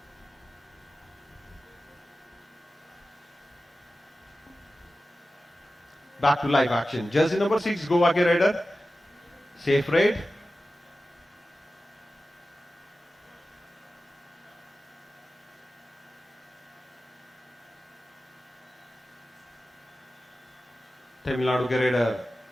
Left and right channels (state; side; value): normal; both; correlation 0.94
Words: Back to live action. Jersey number 6 Goa के रेडर सेफ रेड। तमिलनाडु के रेडर